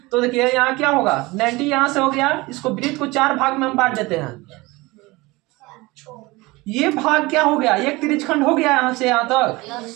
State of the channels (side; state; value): left; quieter; 22.2 dB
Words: तो देखिए यहाँ क्या होगा? 90 यहाँ से हो गया, इसको वृत्त को 4 भाग में हम बांट देते हैं। ये भाग क्या हो गया? एक त्रिज्यखंड हो गया यहाँ से यहाँ तक।